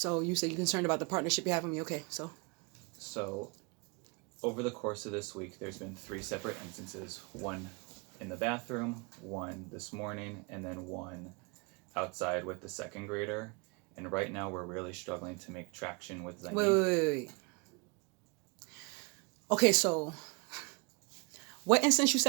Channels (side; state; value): left; quieter; 31.2 dB